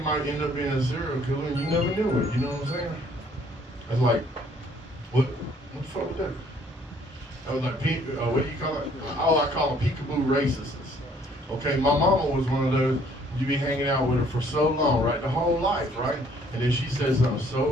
end up being a serial killer and you never knew it. You know what I'm saying? That's like, what the fuck was that? That was like, what do you call it? Oh, I call them peekaboo racists. Okay, my mama was one of those. you be hanging out with her for so long, right? The whole life, right? And then she said something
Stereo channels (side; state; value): both; normal; correlation 0.61